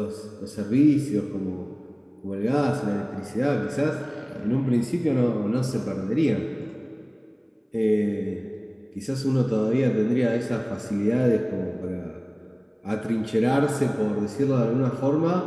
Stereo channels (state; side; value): identical; both; correlation 1.00